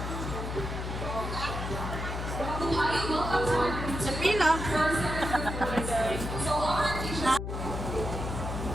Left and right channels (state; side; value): noise; left; hum, 4 dB below the sound